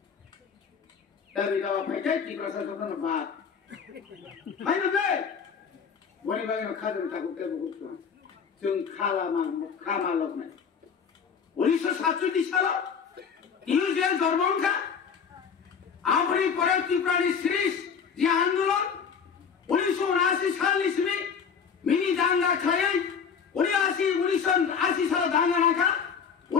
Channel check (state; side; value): quieter; right; 6.5 dB